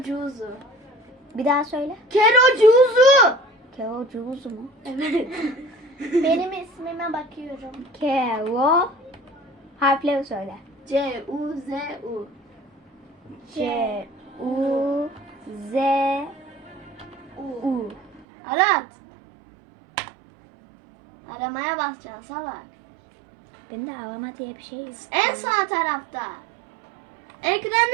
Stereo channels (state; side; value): drops out; left; at 18.2 s